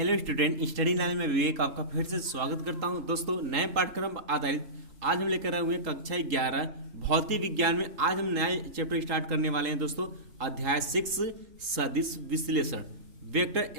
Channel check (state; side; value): late; left; 3.8 ms